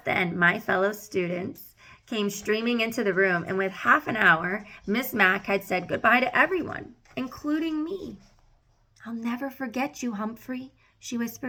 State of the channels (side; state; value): both; identical; correlation 1.00